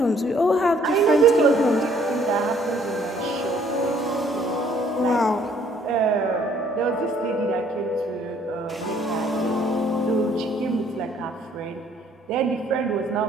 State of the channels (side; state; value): both; normal; correlation 0.61